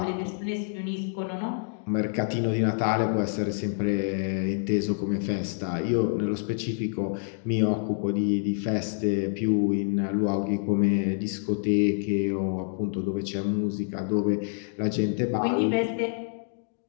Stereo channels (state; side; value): silent; right; digital silence